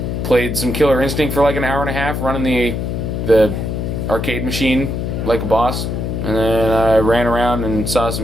played some Killer Instinct for like an hour and a half, running the arcade machine like a boss, and then I ran around and saw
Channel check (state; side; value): noise; left; hum, 2 dB below the sound